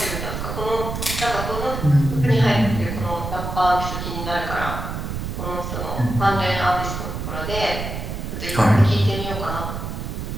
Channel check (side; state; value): right; noise; rumble, 5 dB below the sound